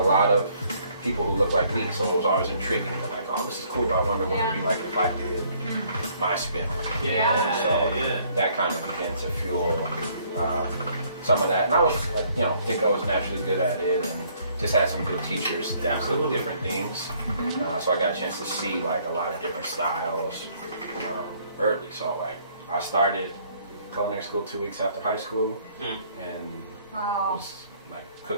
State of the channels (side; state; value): both; inverted; correlation -0.63